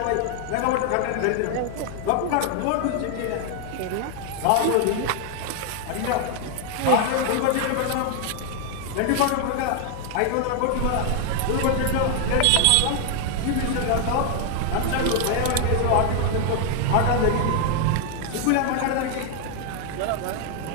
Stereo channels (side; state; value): both; different; correlation 0.00